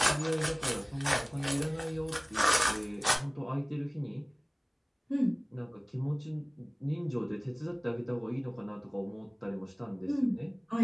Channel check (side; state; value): both; identical; correlation 1.00